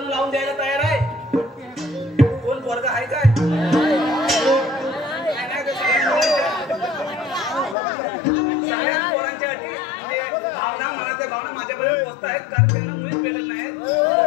लावून द्यायला तयार आहे. कोण वर्ग आहे काय? सगळ्यात पोरांच्या अटी भावना मनाच्या भावना माझ्यापर्यंत पोहोचत आहेत, कारण त्यांना मुळीच भेटत नाहीत.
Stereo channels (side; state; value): right; drops out; at 7.8 s